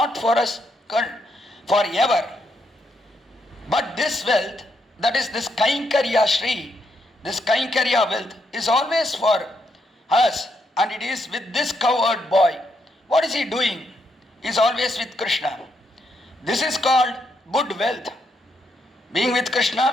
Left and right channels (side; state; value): both; normal; correlation 0.78